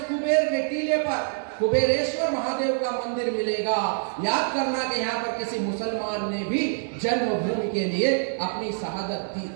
कुबेर के टीले पर कुबेरेश्वर महादेव का मंदिर मिलेगा। याद करना कि यहाँ पर किसी मुसलमान ने भी जन्मभूमि के लिए अपनी शहादत दी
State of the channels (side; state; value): left; silent; digital silence